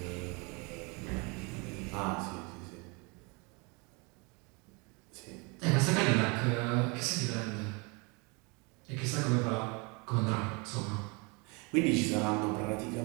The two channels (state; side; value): quieter; left; 30.3 dB